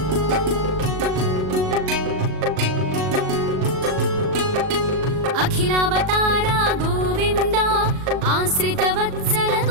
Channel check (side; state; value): left; late; 38 ms